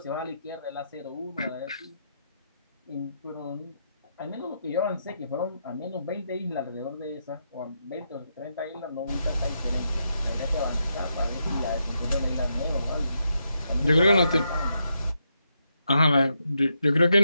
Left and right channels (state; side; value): inverted; both; correlation -0.81